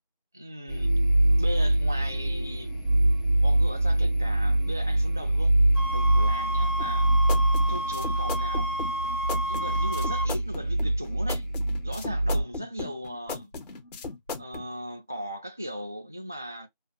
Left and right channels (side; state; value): both; inverted; correlation -0.83